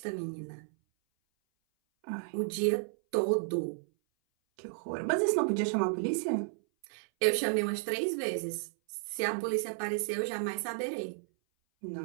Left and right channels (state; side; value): silent; left; 56 dB below the other